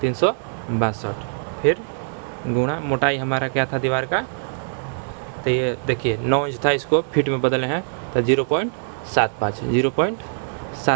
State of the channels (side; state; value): left; silent; digital silence